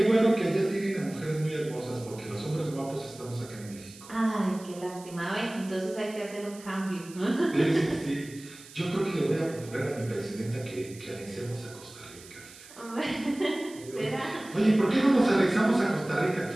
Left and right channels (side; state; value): right; noise; hiss, 19 dB below the sound